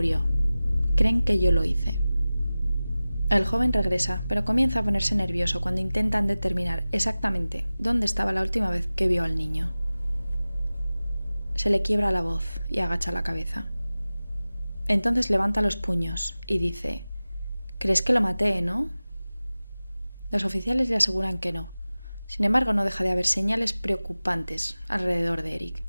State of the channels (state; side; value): inverted; both; correlation -0.97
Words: Creen que yo lo hice». El joven regresa, pero comienza a ponerse nervioso cuando intentan determinar exactamente dónde estaba la última vez que vio al niño. Se le quiebra la voz y agacha la cabeza. Entonces levanta los puños y dice: «¿Crees que lo maté, no?». Los oficiales le aseguran que no. Sin embargo, no deja de haber señales preocupantes alrededor de Eric,